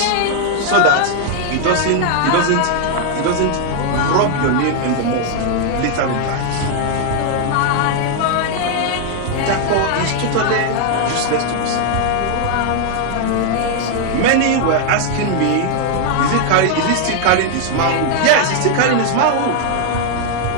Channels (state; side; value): different; both; correlation 0.00